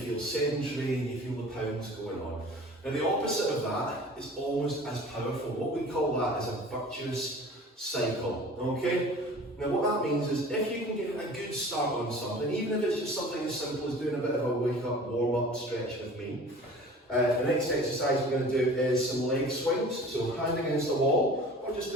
sedentary and you feel the pounds going on. Now the opposite of that is almost as powerful. What we call that is a virtuous cycle, okay? Now what that means is if you can get a good start on something, even if it's just something as simple as doing a bit of a wake up warm up stretch with me, the next exercise we're going to do is some leg swings, so hand against the wall, or just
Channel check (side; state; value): both; normal; correlation 0.43